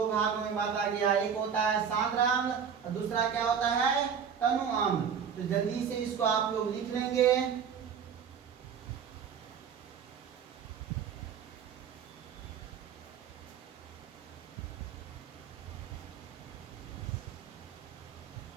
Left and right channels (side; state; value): left; quieter; 7.3 dB